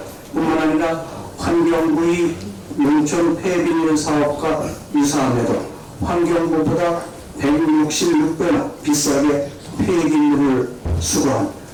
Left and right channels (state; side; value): identical; both; correlation 1.00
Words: 뿐만 아니라 환경부의 농촌 폐비물 사업과 유사함에도 환경부보다 166배나 비싸게 폐기물을 수거한